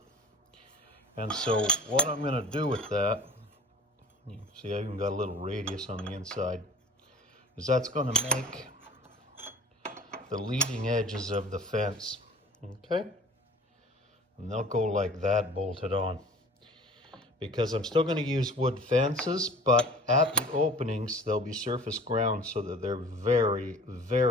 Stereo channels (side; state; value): both; normal; correlation 0.43